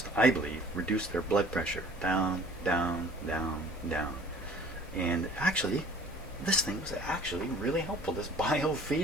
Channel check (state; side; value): normal; both; correlation 0.50